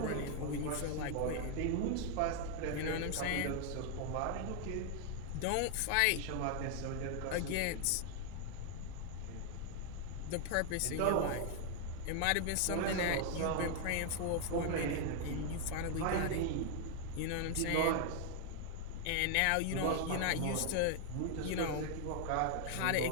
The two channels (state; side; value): different; both; correlation 0.00